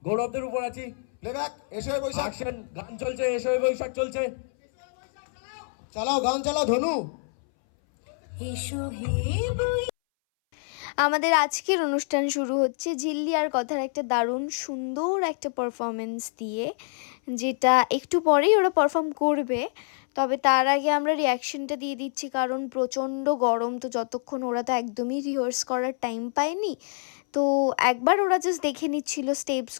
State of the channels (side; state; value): right; silent; 61 dB below the other